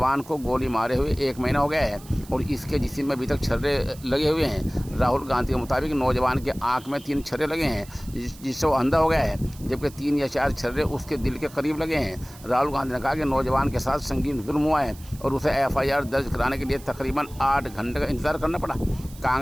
को गोली मारे हुए 1 महीना हो गया है और इसके जिस्म में अभी तक छर्रे लगे हुए हैं। राहुल गांधी के मुताबिक नौजवान के आंख में 3 छर्रे लगे हैं जिससे वो अंधा हो गया है, जबकि 3 या 4 छर्रे उसके दिल के करीब लगे हैं। राहुल गांधी ने कहा कि नौजवान के साथ संगीन जुल्म हुआ है और उसे एफआईआर दर्ज कराने के लिए तकरीबन 8 घंटे का इंतजार करना पड़ा।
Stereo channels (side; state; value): right; noise; hiss, 21 dB below the sound